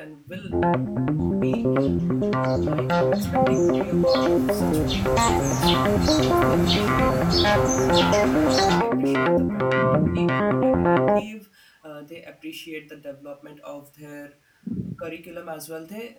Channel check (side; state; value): both; identical; correlation 1.00